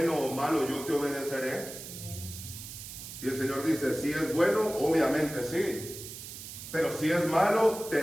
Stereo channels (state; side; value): noise; right; hiss, 11 dB below the sound